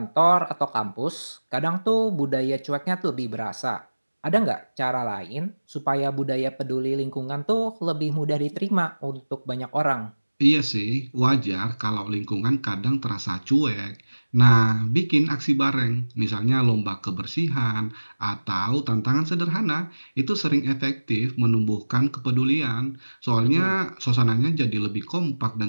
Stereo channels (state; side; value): inverted; both; correlation -1.00